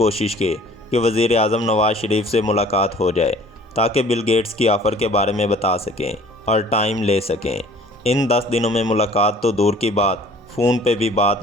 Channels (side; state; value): both; normal; correlation 0.51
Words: کے کہ وزیر اعظم نواز شریف سے ملاقات ہو جائے تاکہ بل گیٹس کی آفر کے بارے میں بتا سکیں اور ٹائم لے سکیں۔ ان 10 دنوں میں ملاقات تو دور کی بات، فون پہ بھی بات